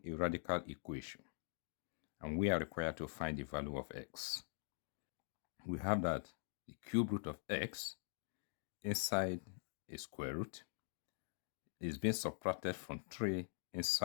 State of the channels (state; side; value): silent; right; digital silence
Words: a radical equation and we are required to find the value of x. We have that the cube root of x inside a square root is being subtracted from 3